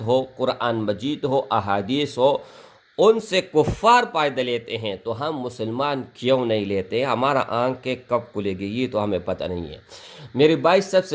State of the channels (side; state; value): both; identical; correlation 1.00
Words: ہو، قرآن مجید ہو، احادیث ہو، ان سے کفار فائدہ لیتے ہیں تو ہم مسلمان کیوں نہیں لیتے؟ ہمارا آنکھیں کب کھلے گی یہ تو ہمیں پتہ نہیں ہے۔ میرے بھائی، سب